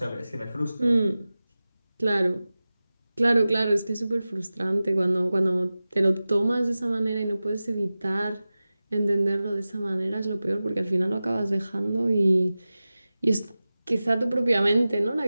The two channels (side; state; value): both; inverted; correlation -0.96